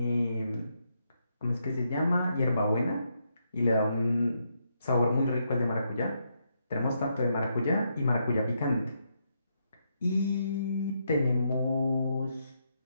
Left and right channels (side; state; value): both; inverted; correlation -0.79